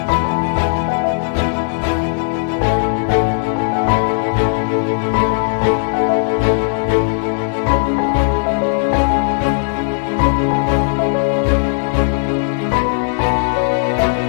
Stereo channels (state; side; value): silent; right; digital silence